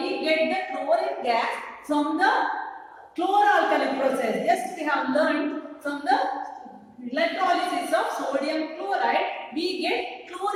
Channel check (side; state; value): both; identical; correlation 1.00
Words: get the chlorine gas from the chlor-alkali process. Just we have learned from the electrolysis of sodium chloride, we get